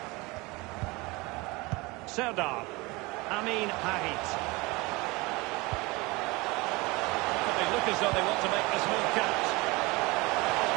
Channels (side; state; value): left; quieter; 24.0 dB